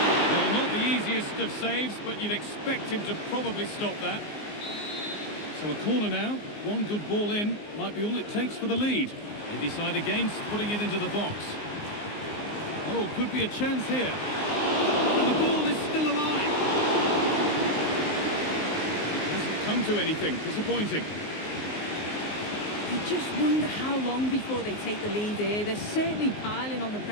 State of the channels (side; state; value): right; late; 19 ms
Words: Well, not the easiest of saves, but you'd expect him to probably stop that. So a corner now, one good ball in, might be all it takes for the lead. They decide against putting it into the box. Oh, could be a chance here. And the ball is still alive. It hasn't come to anything, disappointing. You just wonder how long before they take the lead here. They're certainly piling on the